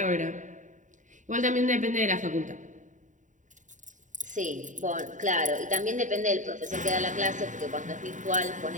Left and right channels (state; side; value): late; left; 0.36 ms